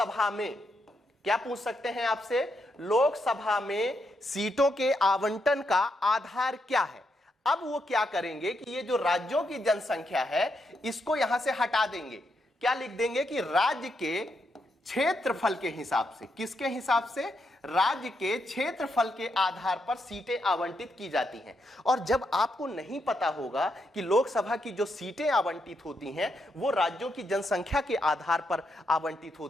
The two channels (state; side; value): normal; both; correlation 0.80